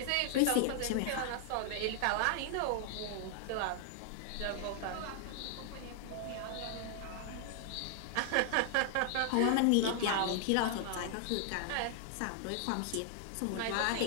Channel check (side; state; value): both; different; correlation 0.00